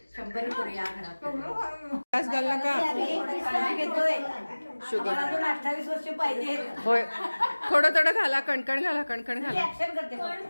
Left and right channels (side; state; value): both; inverted; correlation -1.00